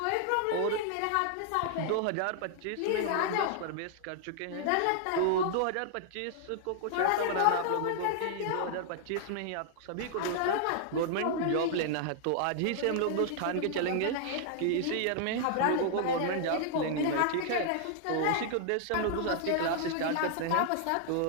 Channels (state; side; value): different; both; correlation 0.00